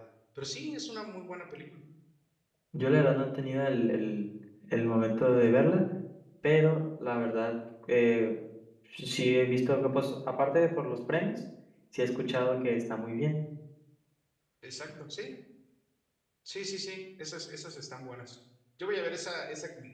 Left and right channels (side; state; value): both; identical; correlation 1.00